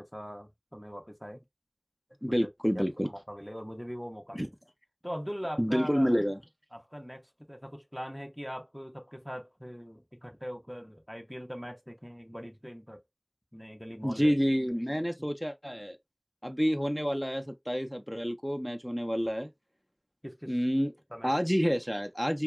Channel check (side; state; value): both; identical; correlation 1.00